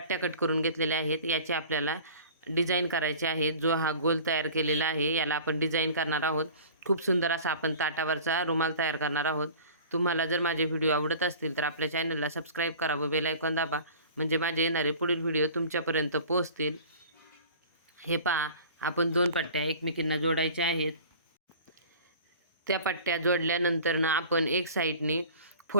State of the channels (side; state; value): both; inverted; correlation -0.42